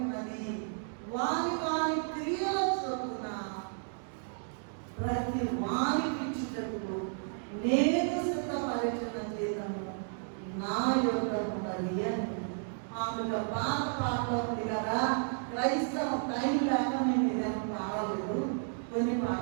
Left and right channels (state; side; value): silent; left; digital silence